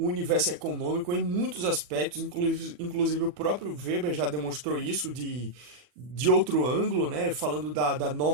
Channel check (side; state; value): left; late; 40 ms